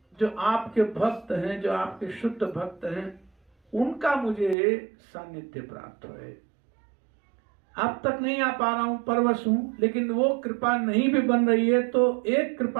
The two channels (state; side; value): drops out; left; at 4.5 s